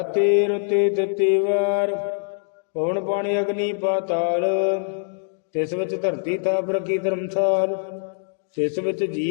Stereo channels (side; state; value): right; silent; digital silence